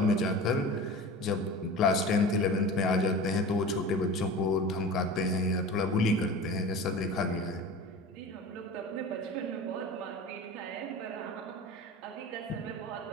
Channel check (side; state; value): both; normal; correlation 0.34